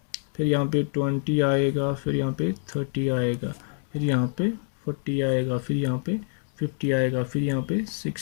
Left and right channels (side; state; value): right; silent; 61 dB below the other